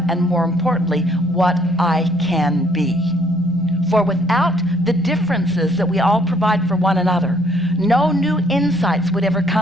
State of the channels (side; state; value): both; normal; correlation 0.63